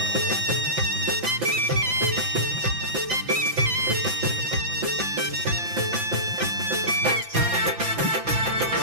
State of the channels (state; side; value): late; left; 5.9 ms